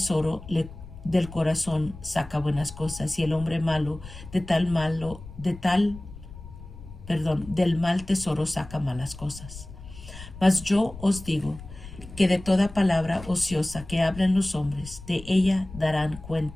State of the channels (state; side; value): noise; left; rumble, 15 dB below the sound